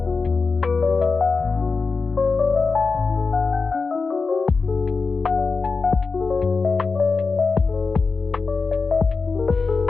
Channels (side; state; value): right; quieter; 4.4 dB